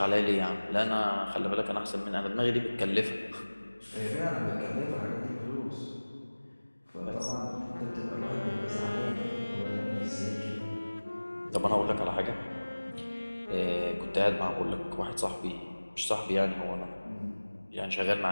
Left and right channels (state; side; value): inverted; both; correlation -1.00